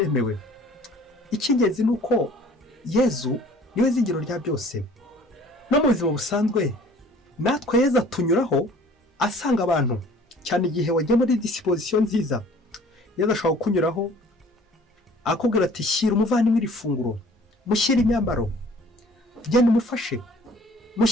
Icy'ingenzi ni uko Yezu niwe zingiro rya byose. No mu buzima busanzwe natwe Yezu tunyuraho asanga abantu, cyane igihe wagiye muri disposition nziza. Yezu ashaka kunyuraho akubwira ati shyira umuvandimwe iri funguro, mushyira imyambaro, genda umufashe,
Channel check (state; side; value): normal; both; correlation 0.52